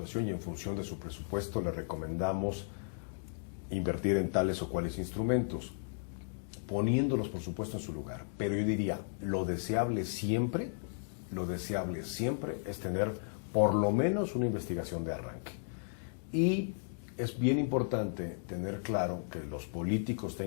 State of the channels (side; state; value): right; silent; digital silence